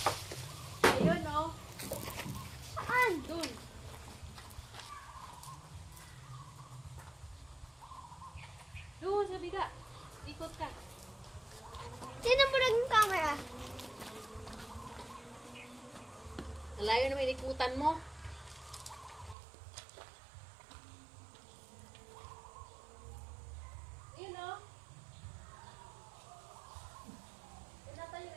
Ayun, oh. Saan? Dun. Doon, sa biga. Ikot ka. Tinan mo lang yung camera. Nalayo naman ikutan mo. Ayun, oh. Yun nata yun.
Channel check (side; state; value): left; drops out; at 19.4 s